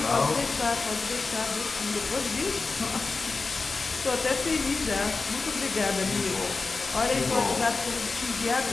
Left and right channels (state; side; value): quieter; right; 4.0 dB